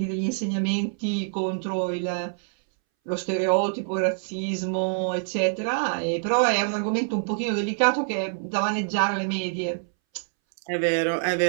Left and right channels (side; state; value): left; silent; 61 dB below the other